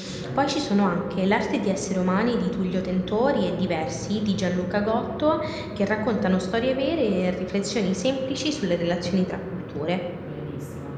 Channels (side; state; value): both; identical; correlation 1.00